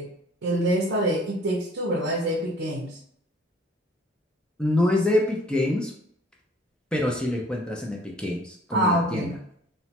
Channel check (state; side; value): normal; both; correlation 0.54